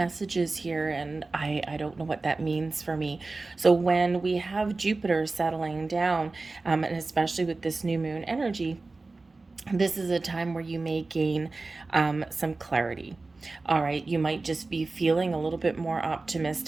here, and I don't know what that means for me. So when we have Jupiter settling down, and especially with this new moon energy, this is a time where you may gain some clarity. All right, you might just be feeling a little bit more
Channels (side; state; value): left; quieter; 3.5 dB